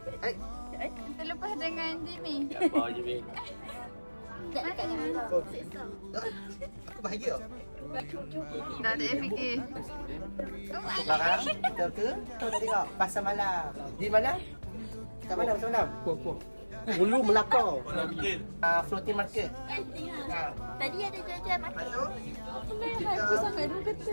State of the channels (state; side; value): inverted; both; correlation -1.00